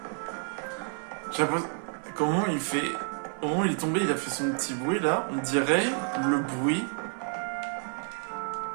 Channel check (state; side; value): silent; left; 57 dB below the other